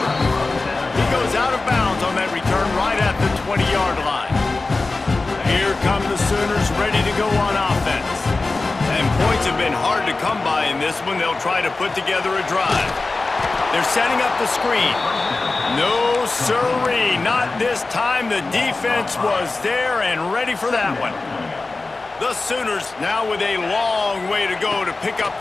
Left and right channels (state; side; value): quieter; right; 3.5 dB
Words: He goes out of bounds on that return right at the 20-yard line. Here come the Sooners ready to go on offense. And points have been hard to come by in this one. They'll try to put together a drive. They're setting up the screen. No, sirree, not this time. The defense was there and ready for that one. The Sooners now with a long way to go to pick up